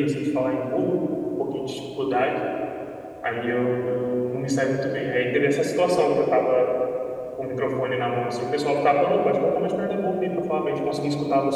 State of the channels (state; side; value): identical; both; correlation 1.00